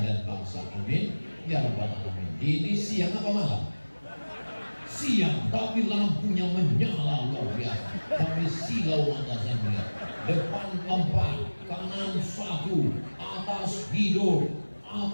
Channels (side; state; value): both; inverted; correlation -1.00